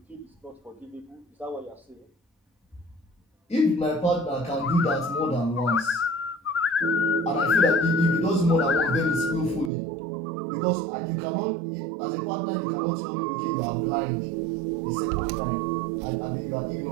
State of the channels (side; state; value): left; drops out; at 9.7 s